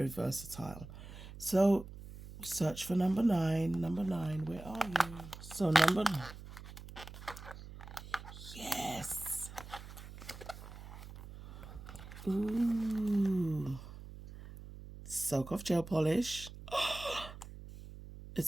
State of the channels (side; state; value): right; noise; hum, 14 dB below the sound